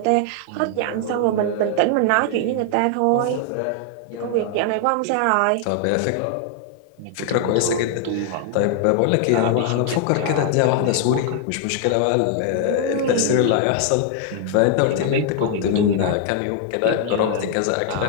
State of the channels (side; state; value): both; different; correlation 0.00